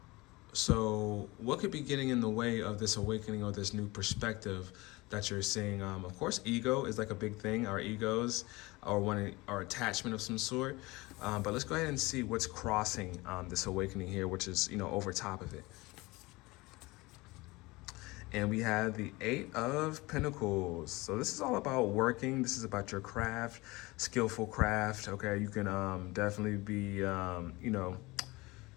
So what could be getting in the way of this awakening or this new perspective that you're seeing? Of course, ego is like a big thing, our egos, or our attachment of some sort. But let's go ahead and see what's crossing this awakening here, which is, over top of it. And we have the 8 of Pentacles. So this is all about working. This is about your craft, skillful craft. Okay, you can definitely be, a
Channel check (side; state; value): right; quieter; 22.3 dB